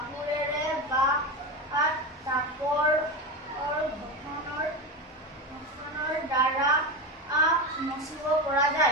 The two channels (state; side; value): normal; both; correlation 0.20